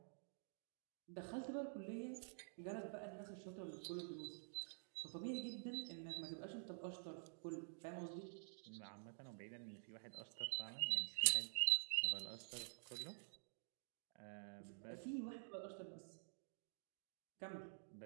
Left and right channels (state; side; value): silent; left; digital silence